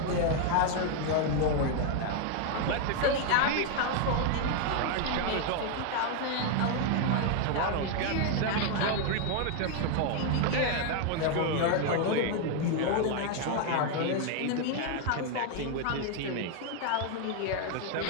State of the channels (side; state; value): both; different; correlation 0.01